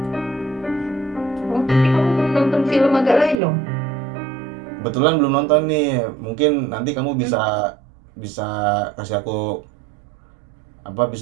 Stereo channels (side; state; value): left; drops out; at 3.4 s